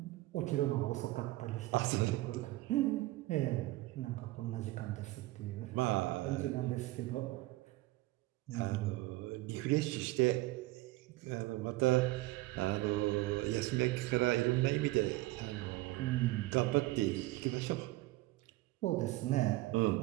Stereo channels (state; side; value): quieter; left; 18.9 dB